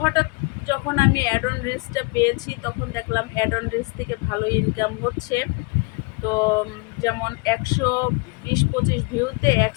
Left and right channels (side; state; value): right; quieter; 29.0 dB